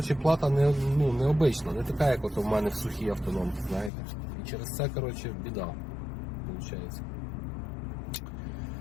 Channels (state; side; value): drops out; right; at 3.9 s